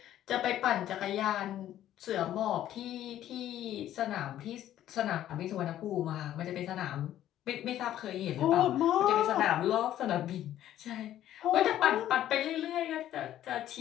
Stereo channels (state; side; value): quieter; right; 12.3 dB